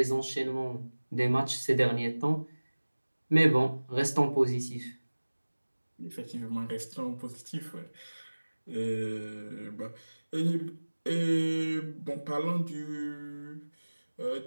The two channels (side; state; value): both; inverted; correlation -1.00